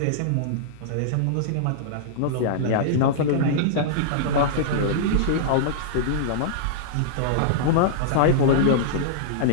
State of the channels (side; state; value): both; different; correlation -0.02